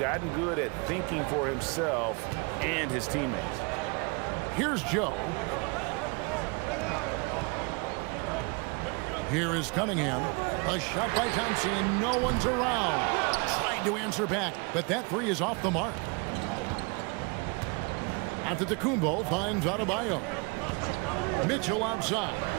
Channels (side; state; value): left; quieter; 30.5 dB